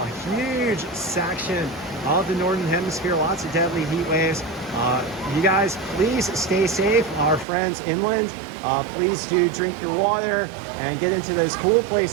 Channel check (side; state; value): left; drops out; at 7.5 s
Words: huge section of the northern hemisphere. Lots of deadly heat waves. You guys, please stay safe. Our friends inland, please do drink your water and get into those cool